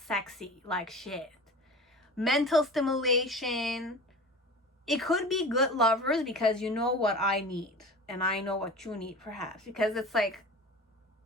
like shit. Mental stimulation. It could be good lovers because you know what I need and I know what you need perhaps, because it's like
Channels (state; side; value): normal; both; correlation 0.36